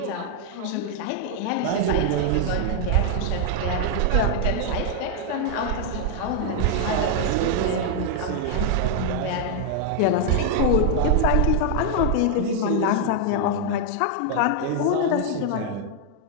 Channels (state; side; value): different; both; correlation 0.00